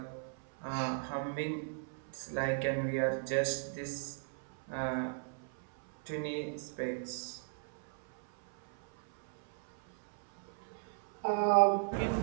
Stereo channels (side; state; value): left; silent; 53 dB below the other